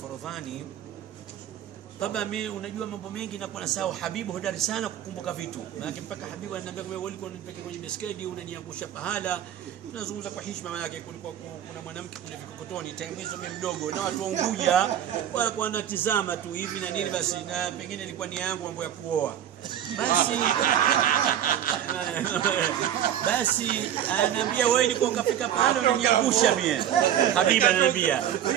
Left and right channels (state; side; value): quieter; left; 10.4 dB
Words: Taba mimi unajua mambo mengi na kwa nasahau. Habibu hodari sana kukumbuka vitu. Maana mpaka Habibu ananiambia wewe ulikuwa unanipeleka kwenye beskedi unaniangusha pahala. Tunazungumza kwa heshima, maana yake kulikuwa kuna mwanamke kule Vikokotoni time hizo mimi mdogo na watu wa Unguja walikuwa wanatizama tu hivi na nini basi, na pengine ilikuwa ni yangu mambo ya kuoa. Basi ananiambia wewe ulikuwa ukafika pahala unaniangusha mimi. Habibu ananiambia